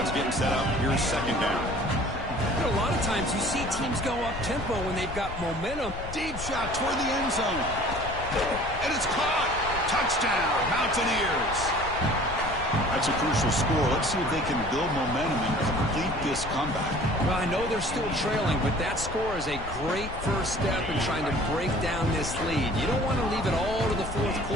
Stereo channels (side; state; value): left; noise; rumble, 10 dB below the sound